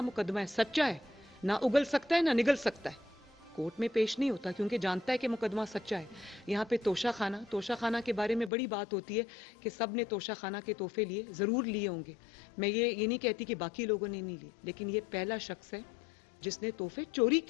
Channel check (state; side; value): drops out; right; at 8.5 s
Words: मुकदमा है, सच्चा है, ना उगल सकता है ना निगल सकता है, कोर्ट में पेश नहीं होता क्योंकि जानता है कि मुकदमा सच्चा है। यहाँ पे तोशा खाना के बारे में बड़ी बात होती है कि सब ने तोशा खाना के तोहफे लिए, जरूर लिए होंगे, मैं ये नहीं कहती कि बाकी लोगों ने नहीं लिए, लेकिन ये पहला शख्स है जिसने तोहफे चोरी